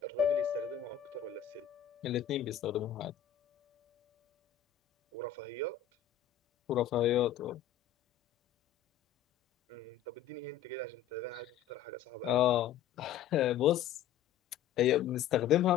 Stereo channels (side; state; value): right; quieter; 9.7 dB